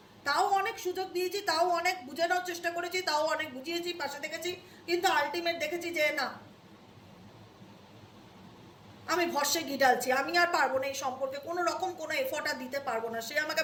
তাও অনেক সুযোগ দিয়েছি, তাও অনেক বুঝে নেওয়ার চেষ্টা করেছি, তাও অনেক বুঝিয়েছি, পাশে দেখেছি, কিন্তু আলটিমেট দেখেছি যে না, আমি ভরসে ঘি ঢালছি, আমি আর পারবো না এই সম্পর্কে কোনো রকম কোনো এফোর্ট আর দিতে পারবো না। সে আমাকে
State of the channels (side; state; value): both; identical; correlation 1.00